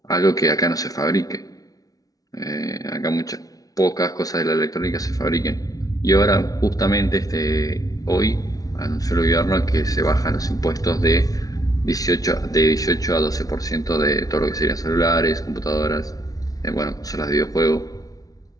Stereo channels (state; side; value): late; right; 0.18 ms